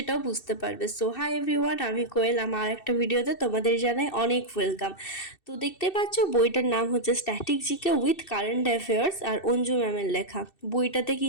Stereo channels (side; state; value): right; late; 2.6 ms